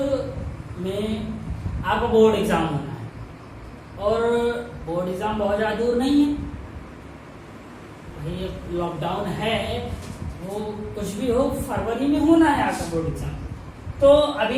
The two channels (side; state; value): both; identical; correlation 1.00